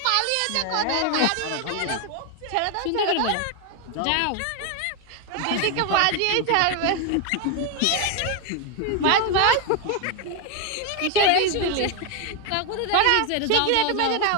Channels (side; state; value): both; different; correlation 0.01